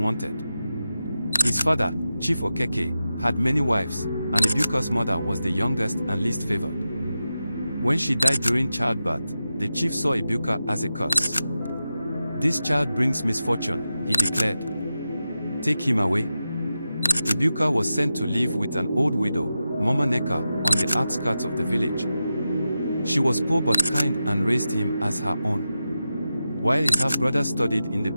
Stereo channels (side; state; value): both; inverted; correlation -0.91